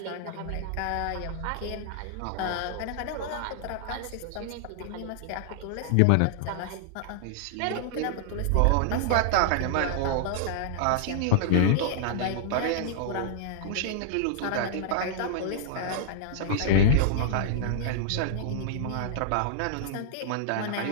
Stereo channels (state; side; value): different; both; correlation -0.01